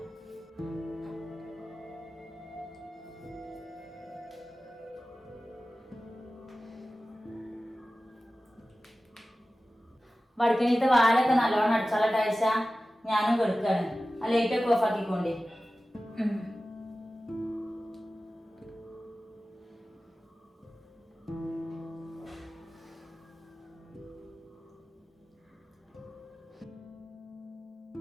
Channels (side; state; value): both; normal; correlation 0.95